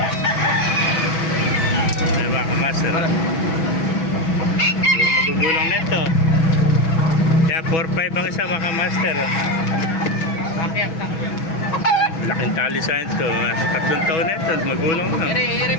Ayan mga kamaster. Magugulang nito. Kaya 4-5 ang isa mga master. Laking tali sa ito. 3 taon na ito. Magulang na. Ere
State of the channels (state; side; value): late; right; 6.1 ms